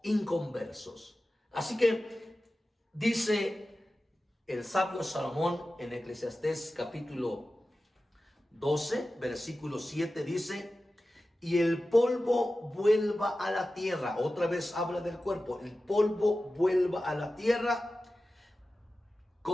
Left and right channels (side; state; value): both; normal; correlation 0.94